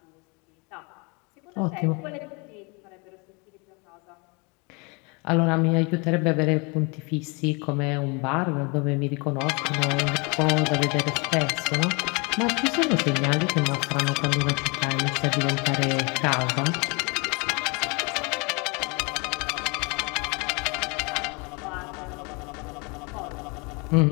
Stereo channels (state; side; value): quieter; right; 30.6 dB